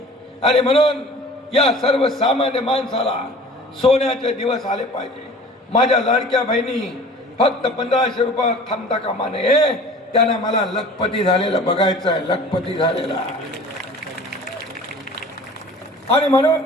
आणि म्हणून या सर्वसामान्य माणसाला सोन्याचे दिवस आले पाहिजे. माझ्या लाडक्या बहिणी फक्त 1500 रुपये थांबता कामा नये, त्यांना मला लखपती झालेलं बघायचं आहे, लखपती झालेला. आणि म्हणून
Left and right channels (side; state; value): both; normal; correlation 0.45